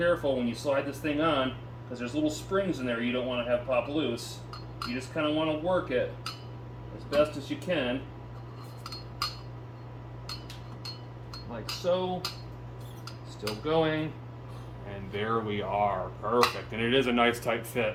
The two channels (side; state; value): both; identical; correlation 1.00